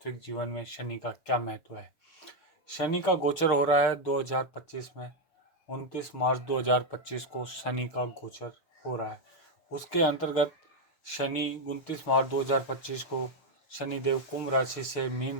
जीवन में शनि का क्या महत्व है। शनि का गोचर हो रहा है 2025 में। 29 मार्च 2025 को शनि का गोचर हो रहा है। उसके अंतर्गत शनि 29 मार्च 2025 को शनिदेव कुंभ राशि से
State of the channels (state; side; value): late; right; 6.6 ms